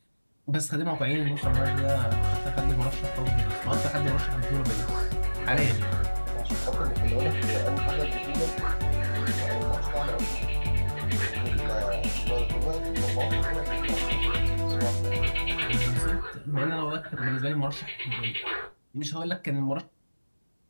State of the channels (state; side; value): inverted; both; correlation -1.00